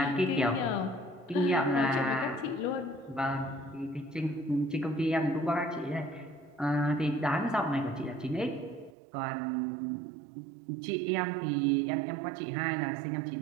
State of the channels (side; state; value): left; drops out; at 9.0 s